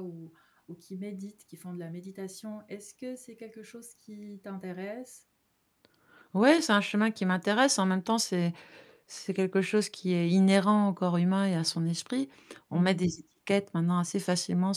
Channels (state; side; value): identical; both; correlation 1.00